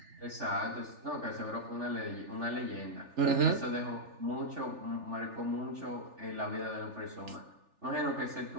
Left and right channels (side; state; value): left; late; 3.4 ms